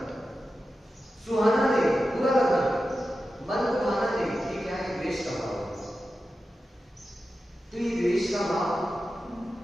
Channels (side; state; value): both; normal; correlation 0.92